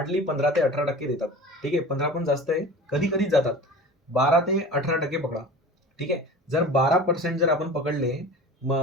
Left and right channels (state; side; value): normal; both; correlation 0.37